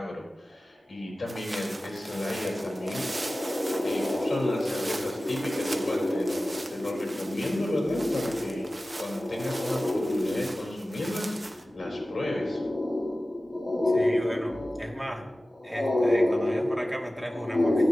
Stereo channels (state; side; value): normal; both; correlation 0.96